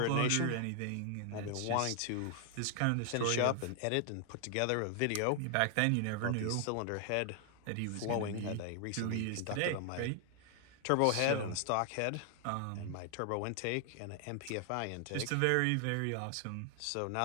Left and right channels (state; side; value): different; both; correlation 0.00